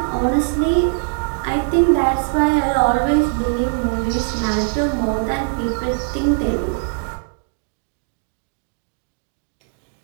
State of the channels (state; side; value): silent; left; 65 dB below the other